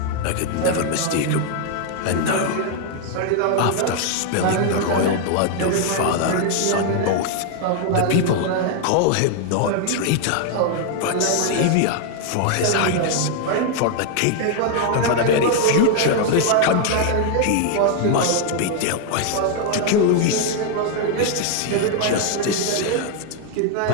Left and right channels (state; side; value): different; both; correlation 0.00